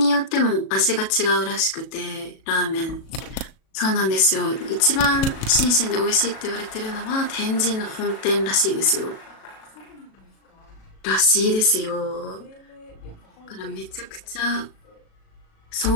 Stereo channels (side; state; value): right; late; 37 ms